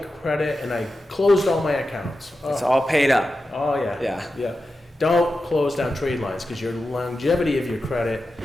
and I closed all my accounts. It's all paid up. Oh, yeah. Yeah. Don't close down trade lines, because your longevity of your credit,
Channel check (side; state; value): both; normal; correlation 0.91